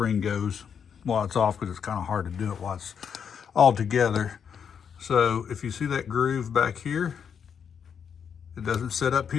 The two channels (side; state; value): right; quieter; 7.3 dB